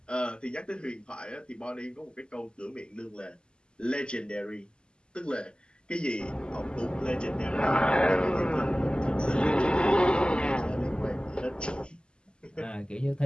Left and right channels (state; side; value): late; right; 0.049 ms